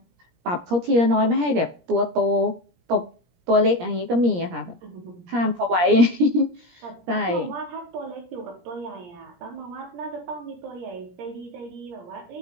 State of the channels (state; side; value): late; left; 17 ms